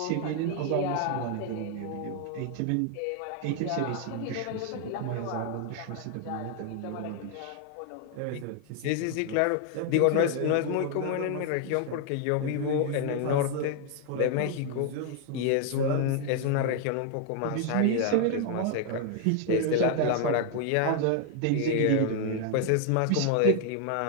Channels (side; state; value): both; different; correlation 0.00